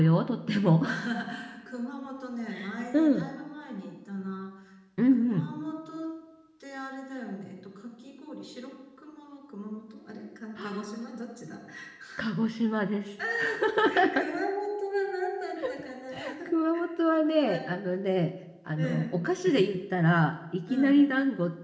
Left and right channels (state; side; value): identical; both; correlation 1.00